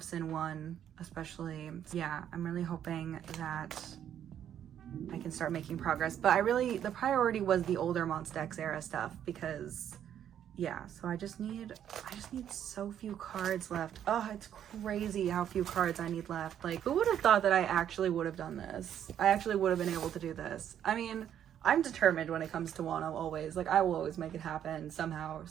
Sin 1 especially. Yeah, I'm really hoping that I can start making progress, but the priority was the older Monsta X era stuff because yeah, so I just need so few cards left. Oh, it's crazy how few cards I need left. Like, who would have thought that I actually would have done this? I actually would have been able to do this. I mean, I'm determined when it comes to Wonho always. Like, I will always make it happen somehow,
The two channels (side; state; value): left; quieter; 9.9 dB